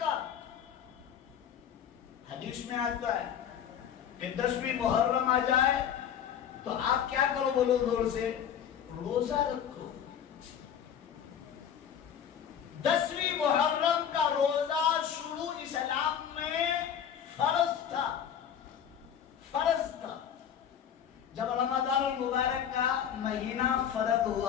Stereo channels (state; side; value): quieter; right; 8.8 dB